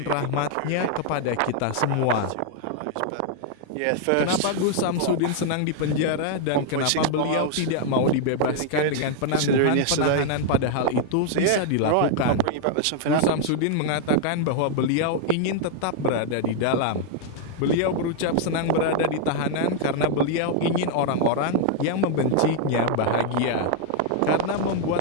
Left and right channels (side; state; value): both; different; correlation 0.00